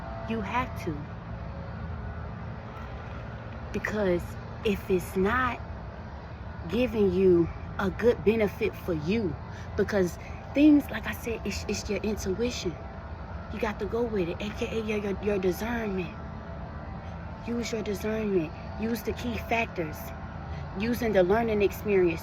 You have to. Because if it's not giving you a good benefit for you, because things, like I said, it's your intuition. You got to go with it, aka your discernment. Use your discernment. Use the key factors. Using the learning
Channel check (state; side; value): identical; both; correlation 1.00